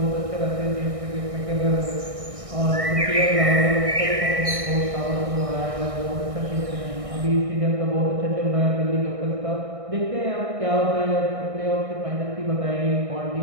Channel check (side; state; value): left; late; 1.6 ms